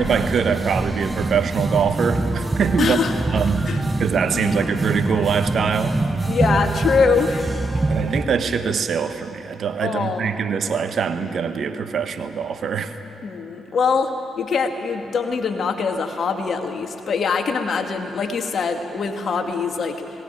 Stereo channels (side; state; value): both; normal; correlation 0.77